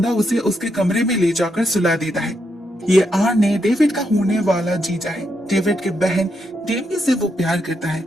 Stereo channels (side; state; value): both; normal; correlation 0.81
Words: उसे उसके कमरे में ले जाकर सुला देता है। ये आर्ने डेविड का होने वाला जीजा है। डेविड की बहन डेमी से वो प्यार करता है